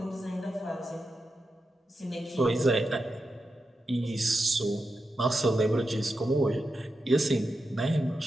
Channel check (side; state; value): both; normal; correlation 0.89